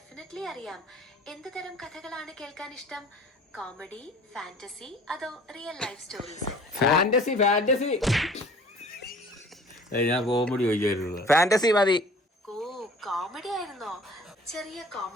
അറിയാം. എന്ത് തരം കഥകളാണ് കേൾക്കാൻ ഇഷ്ടം? കോമഡി, ഫാന്റസി, അതോ റിയൽ ലൈഫ് സ്റ്റോറീസ്? ഫാന്റസി. ഞാൻ കോമഡി ചോദിക്കാറുള്ളത്. ഫാന്റസി മതി. ഓ, കോമഡി ആയിരുന്നോ? ചെറിയ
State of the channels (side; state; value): both; normal; correlation 0.48